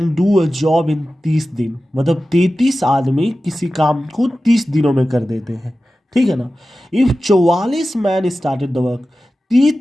do a job in 30 दिन, मतलब 33 आदमी किसी काम को 30 दिनों में कर देते हैं, ठीक है ना। If 44 man started the work,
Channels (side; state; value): both; normal; correlation 0.94